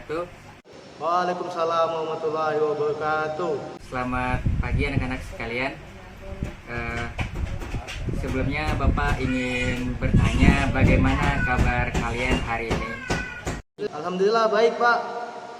Waalaikumsalam warahmatullahi wabarakatuh. Selamat pagi anak-anak sekalian. Eh, Sebelumnya Bapak ingin bertanya bagaimana kabar kalian hari ini? Alhamdulillah baik, Pak.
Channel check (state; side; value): identical; both; correlation 1.00